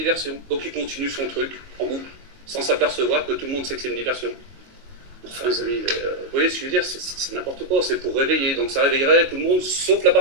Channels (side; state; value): left; late; 22 ms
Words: Donc il continue son truc en boucle, sans s'apercevoir que tout le monde sait que c'est une diversion. Enfin, les amis, vous voyez ce que je veux dire, c'est n'importe quoi, c'est pour réveiller. Donc ça réveillerait tout le monde, sauf la